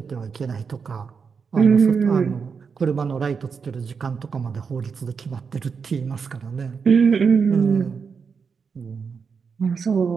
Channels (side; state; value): left; quieter; 5.7 dB